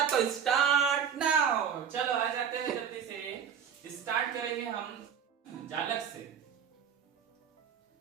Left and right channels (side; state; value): left; quieter; 7.7 dB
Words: तो स्टार्ट नाउ। चलो आ जाते हैं, जल्दी से स्टार्ट करेंगे हम जालक से।